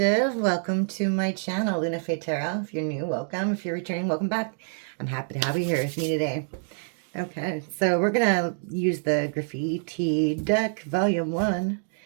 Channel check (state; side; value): silent; left; digital silence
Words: Welcome to my channel, LunaFae Tarot. If you're new, welcome. If you're returning, welcome back. I'm happy to have you here with me today. Okay, so we're going to use the Graffiti deck, Volume 1,